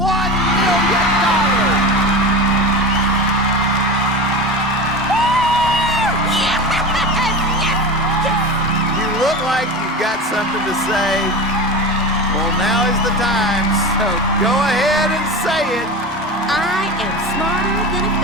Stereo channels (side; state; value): both; normal; correlation 0.27